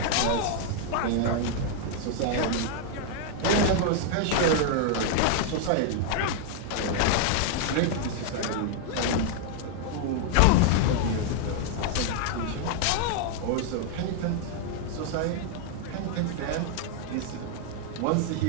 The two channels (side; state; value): both; different; correlation 0.00